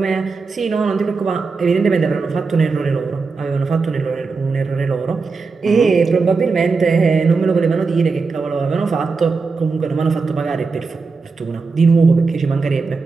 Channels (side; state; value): left; quieter; 4.5 dB